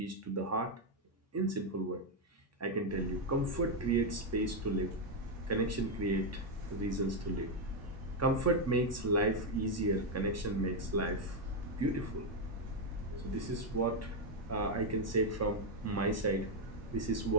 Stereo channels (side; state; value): both; normal; correlation 0.02